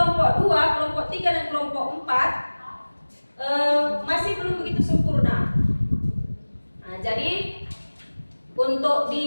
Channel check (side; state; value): both; inverted; correlation -1.00